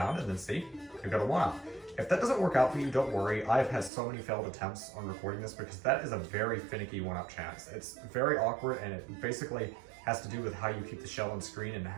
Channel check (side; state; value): left; drops out; at 3.9 s